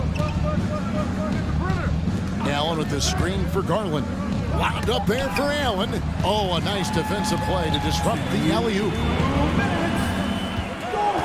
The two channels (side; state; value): both; identical; correlation 1.00